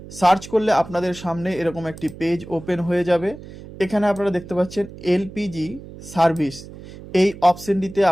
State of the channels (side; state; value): right; noise; hum, 16 dB below the sound